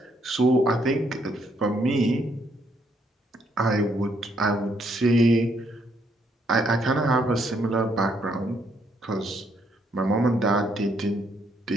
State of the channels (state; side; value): normal; both; correlation 0.72